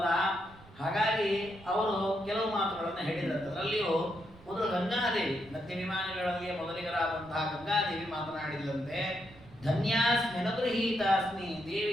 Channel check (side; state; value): right; noise; rumble, 22 dB below the sound